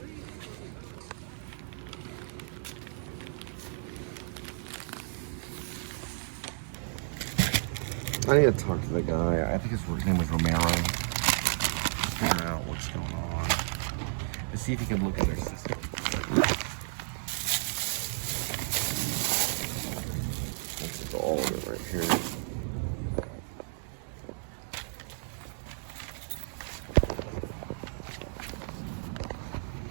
I need to talk to the guy. I think his name was Romero. Figure out what's going on. To see if he can look at their system. This is all of it right here.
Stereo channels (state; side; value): silent; left; digital silence